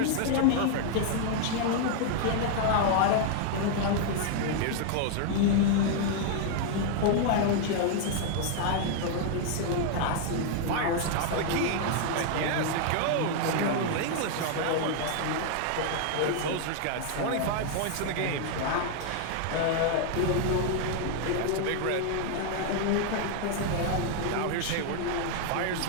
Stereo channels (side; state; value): both; different; correlation 0.00